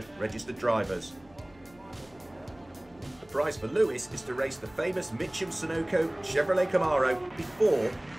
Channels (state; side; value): noise; left; hum, 28 dB below the sound